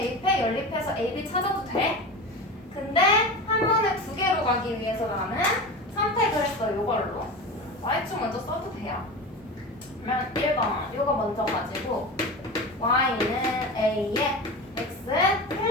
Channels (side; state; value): both; normal; correlation 0.28